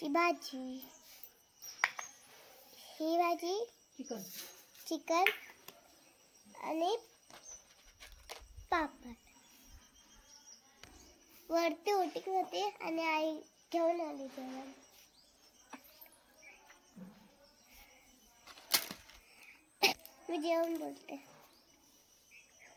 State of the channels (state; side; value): identical; both; correlation 1.00